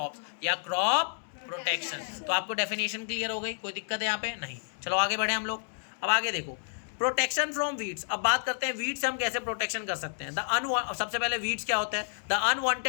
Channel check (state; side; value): silent; right; digital silence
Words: या क्रॉप प्रोटेक्शन। तो आपको डेफिनेशन क्लियर हो गई? कोई दिक्कत है यहाँ पे? नहीं। चलो आगे बढ़े हम लोग। अब आगे देखो, प्रोटेक्शन फ्रॉम वीड्स। अब बात करते हैं वीड्स से हम कैसे प्रोटेक्शन कर सकते हैं। सबसे पहले वीड्स क्या होता है? The